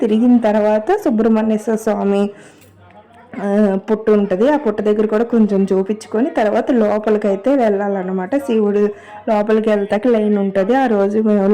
తిరిగిన తర్వాత సుబ్రహ్మణ్యేశ్వర స్వామి పుట్టు ఉంటుంది. ఆ పుట్ట దగ్గర కూడా కొంచెం చూపించుకొని తర్వాత లోపలికైతే వెళ్ళాలన్నమాట. శివుడు లోపలికి వెళ్తాక లైన్ ఉంటుంది. ఆ రోజు మేము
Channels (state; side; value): identical; both; correlation 1.00